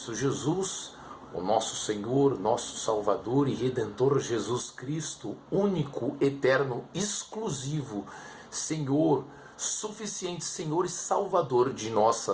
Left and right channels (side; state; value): both; identical; correlation 1.00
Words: Jesus, o nosso Senhor, nosso Salvador e Redentor Jesus Cristo, único, eterno, exclusivo, Senhor, suficiente Senhor e Salvador de